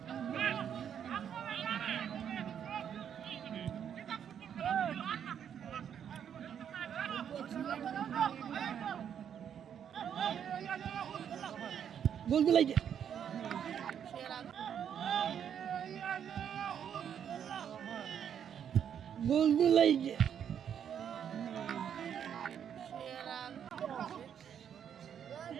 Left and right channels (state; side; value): quieter; left; 8.6 dB